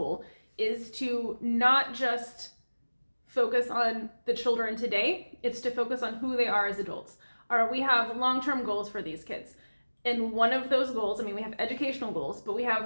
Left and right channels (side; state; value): both; inverted; correlation -1.00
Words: is to not just focus on the children today, it's to focus on who they are as adults. We have long-term goals for these kids. And one of those goals, we have educational goals, but we